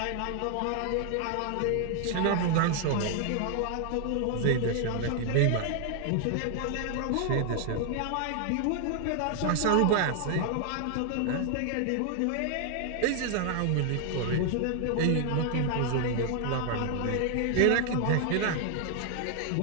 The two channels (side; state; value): both; different; correlation 0.00